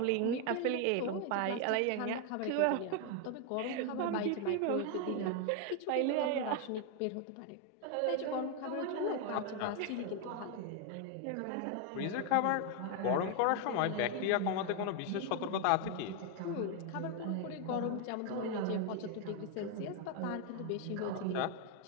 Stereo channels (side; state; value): both; different; correlation 0.00